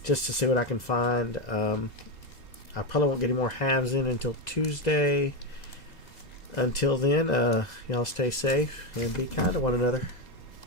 just to see what I can find. I probably won't get any more halves in until Tuesday. Until then, y'all stay safe and be kind to one another.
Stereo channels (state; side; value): late; right; 2.0 ms